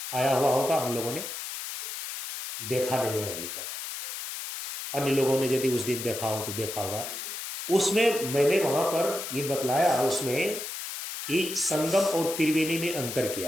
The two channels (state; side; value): noise; left; hiss, 7 dB below the sound